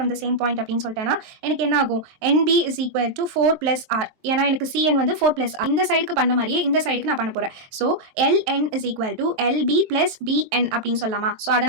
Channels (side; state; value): left; late; 23 ms